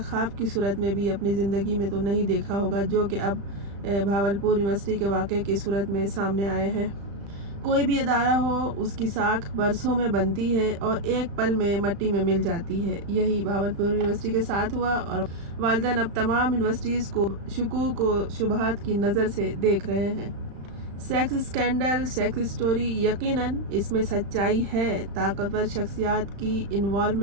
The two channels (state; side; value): late; left; 35 ms